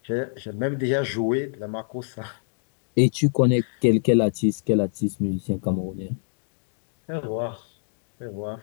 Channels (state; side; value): silent; right; digital silence